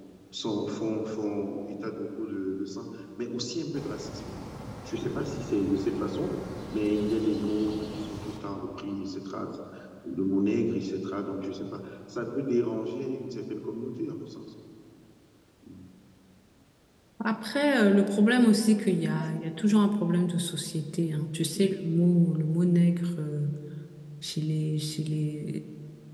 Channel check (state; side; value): identical; both; correlation 1.00